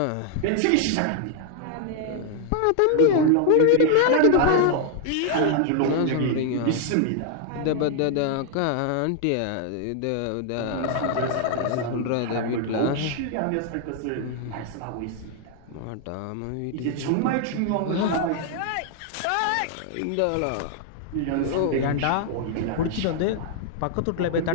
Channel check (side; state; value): both; different; correlation 0.00